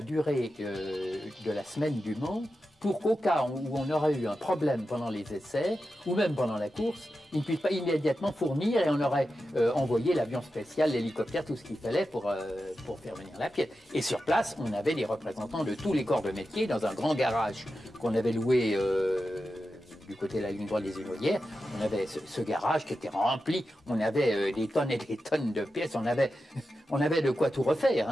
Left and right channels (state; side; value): normal; both; correlation 0.91